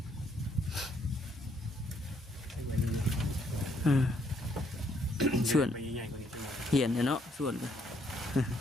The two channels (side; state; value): both; normal; correlation 0.70